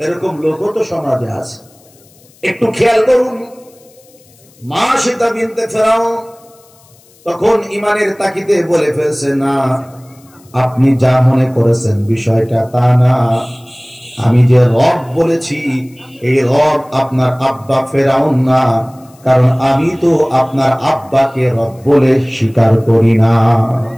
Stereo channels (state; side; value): noise; left; hiss, 29 dB below the sound